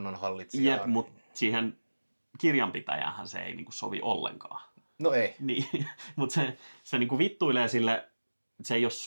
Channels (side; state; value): both; inverted; correlation -1.00